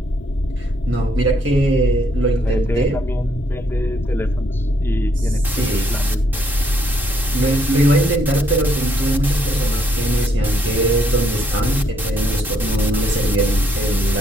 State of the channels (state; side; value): normal; both; correlation 0.71